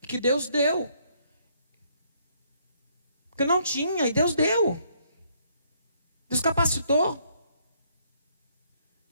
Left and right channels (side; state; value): both; inverted; correlation -0.69